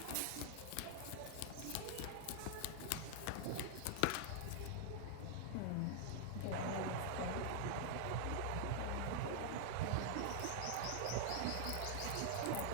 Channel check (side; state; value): both; different; correlation 0.00